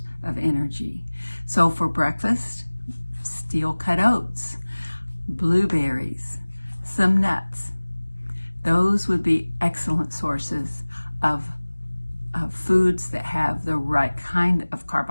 of energy. So for breakfast, steel cut oats. blueberries, some nuts. Those would be excellent sources of foods that have the right kind of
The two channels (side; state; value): both; inverted; correlation -1.00